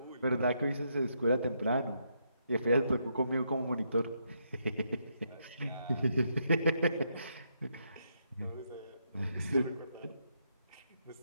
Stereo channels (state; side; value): inverted; both; correlation -0.78